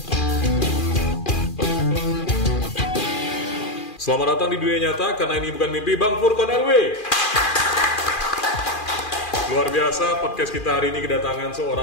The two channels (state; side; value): late; right; 2.4 ms